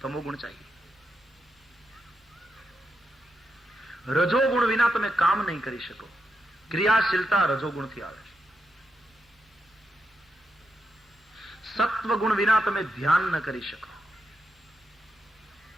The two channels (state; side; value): normal; both; correlation 0.85